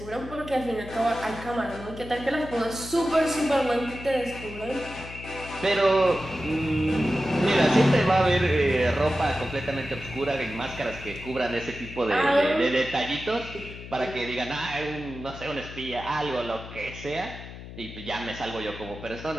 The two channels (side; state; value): left; noise; hum, 13 dB below the sound